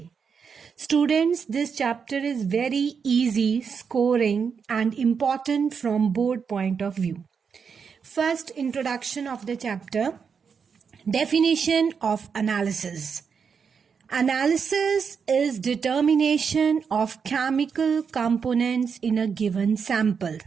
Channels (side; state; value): left; quieter; 6.2 dB